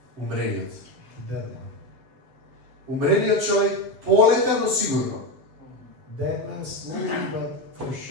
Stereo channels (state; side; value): late; left; 7.6 ms